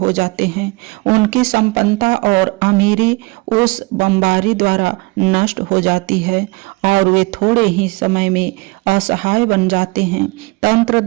जाते हैं। उनकी संपन्नता और अमीरी उस बमबारी द्वारा नष्ट हो जाती है और वे थोड़े ही समय में असहाय बन जाते हैं। तंत्र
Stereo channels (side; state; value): left; quieter; 25.0 dB